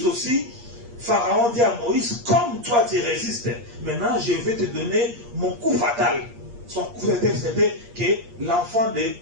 aussi, Pharaon dit à Moïse, comme toi tu résistes, maintenant je vais te donner mon coup fatal. Son coup fatal, c'était que l'enfant de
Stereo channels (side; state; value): left; late; 8.5 ms